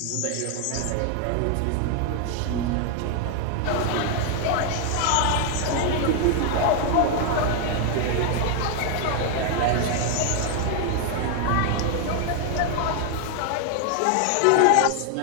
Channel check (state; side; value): different; both; correlation 0.00